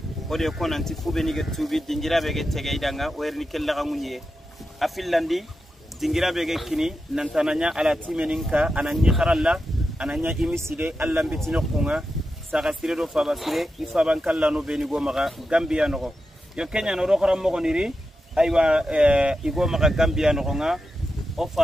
ولي يكون أنت فوبني كتوبي دينجرا بيجت تجايدانا ويرني كل غمونية أفيلاندي دينجرا بيجت كني ننتانيا على تيمينكا أنا نيخرالله أنا نيا إمسيدة الله بتينو كونغا sagasire do fabasire ifaban kallano beni go maga Gambia no yo Kenya no rokora mo niri aywa igo maga Gambia no nga o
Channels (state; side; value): normal; both; correlation 0.89